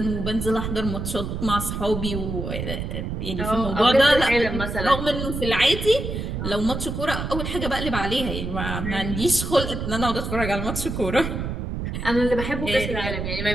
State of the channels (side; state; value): right; noise; rumble, 4 dB below the sound